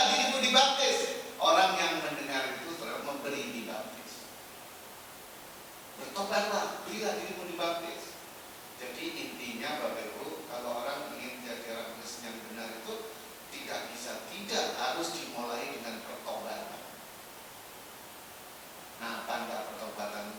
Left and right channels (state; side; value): identical; both; correlation 1.00